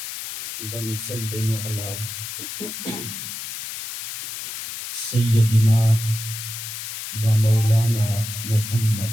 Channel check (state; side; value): noise; left; hiss, 8 dB below the sound